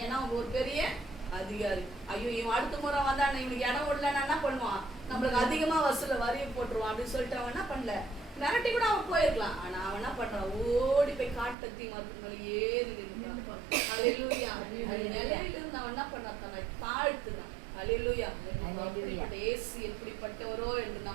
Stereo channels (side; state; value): left; drops out; at 11.6 s